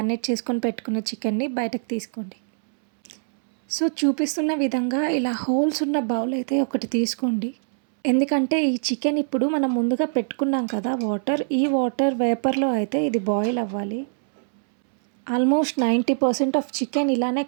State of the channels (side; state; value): left; silent; 63 dB below the other